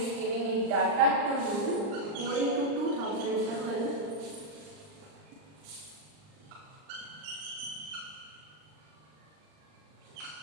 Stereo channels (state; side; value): late; left; 39 ms